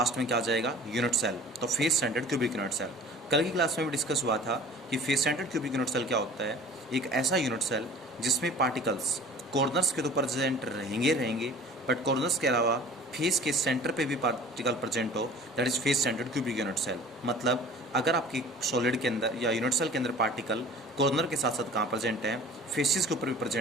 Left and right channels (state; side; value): normal; both; correlation 0.45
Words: में क्या आ जाएगा यूनिट सेल। तो face centred cubic unit cell कल की क्लास में भी डिस्कस हुआ था कि face centred cubic unit cell क्या होता है। एक ऐसा यूनिट सेल जिसमें पार्टिकल्स कॉर्नर्स के तो प्रेजेंट रहेंगे बट कॉर्नर्स के अलावा फेस के सेंटर पे भी पार्टिकल प्रेजेंट हो, that is face centred cubic unit cell. मतलब अगर आपकी सॉलिड के अंदर या यूनिट सेल के अंदर पार्टिकल कॉर्नर के साथ साथ कहाँ प्रेजेंट है, फेसिस के ऊपर भी